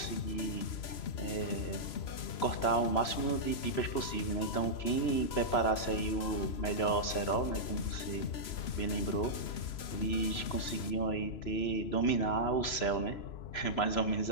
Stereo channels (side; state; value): right; late; 3.0 ms